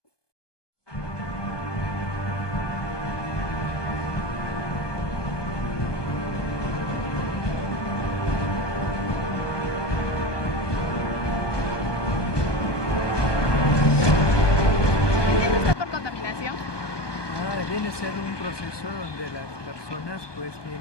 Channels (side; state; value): right; late; 1.2 ms